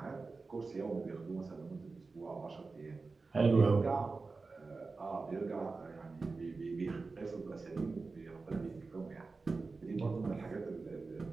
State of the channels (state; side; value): quieter; left; 4.0 dB